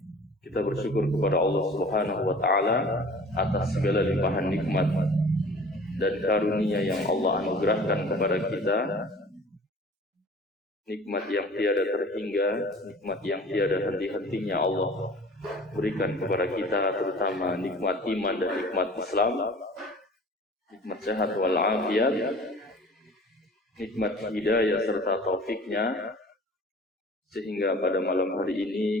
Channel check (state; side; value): normal; both; correlation 0.46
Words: kita bersyukur kepada Allah Subhanahu wa taala atas segala limpahan nikmat dan karunia yang Allah anugerahkan kepada kita. Nikmat yang tiada terhingga, nikmat yang tiada henti-hentinya Allah berikan kepada kita, terutama nikmat iman dan nikmat Islam, nikmat sehat wal afiat, nikmat hidayah serta taufiknya, sehingga pada malam hari